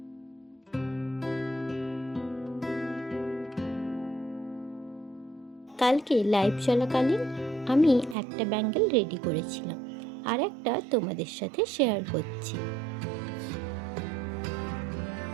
কালকে লাইভ চলাকালীন আমি একটা ব্যাঙ্গেল রেডি করেছিলাম, আর একটা তোমাদের সাথে শেয়ার করছি।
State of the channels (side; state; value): left; drops out; at 8.2 s